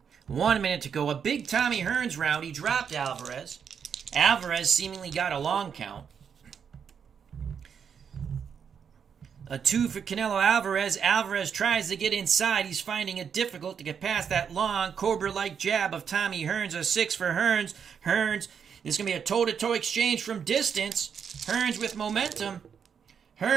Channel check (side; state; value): left; quieter; 7.2 dB